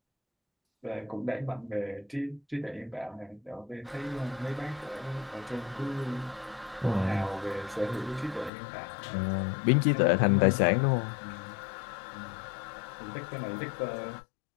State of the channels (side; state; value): right; drops out; at 8.5 s